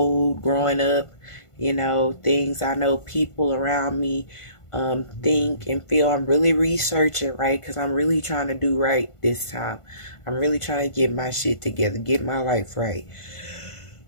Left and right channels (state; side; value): late; right; 1.5 ms